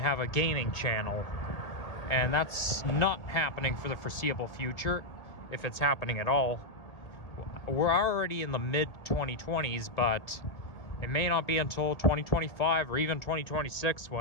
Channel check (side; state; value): right; late; 1.8 ms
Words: a gaming channel, and that's not happening for the foreseeable future, if it's happening at all. We're already in the mid-2020s, but it may not be until 2025 or even 2026